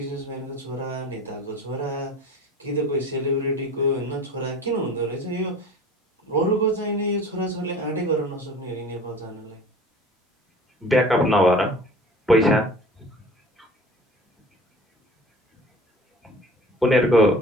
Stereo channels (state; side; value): normal; both; correlation 0.42